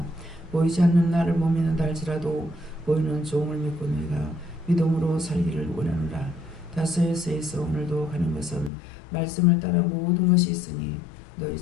보이지 않는 나를 못 믿는다 할지라도 보이는 종을 믿고 너희가 믿음으로 살기를 원하노라. 다스에서 오늘도 가는 것은 말씀을 따라 모든 것이 있으니 너희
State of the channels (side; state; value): right; drops out; at 8.7 s